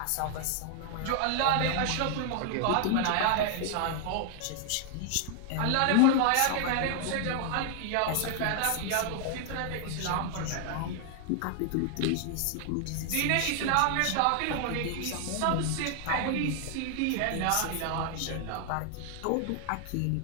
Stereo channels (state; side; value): different; both; correlation 0.00